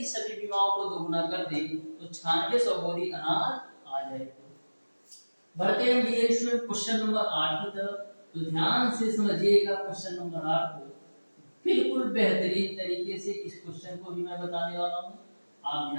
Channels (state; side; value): inverted; both; correlation -1.00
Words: सभी बीमाओं को दोगुना कर दें तो 9600 बोरी अनाज आ जाएगा। बढ़ते हैं डियर स्टूडेंट क्वेश्चन नंबर 8 की तरफ। तो ध्यान से समझिएगा क्वेश्चन नंबर 8 को। बिल्कुल बेहतरीन तरीके से इस क्वेश्चन को भी मैं बताने वाला हूं, आप